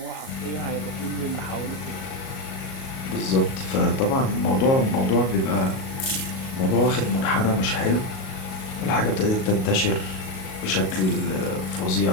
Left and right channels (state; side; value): late; right; 37 ms